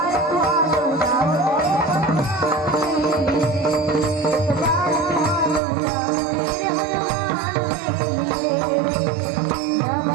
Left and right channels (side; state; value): left; drops out; at 5.6 s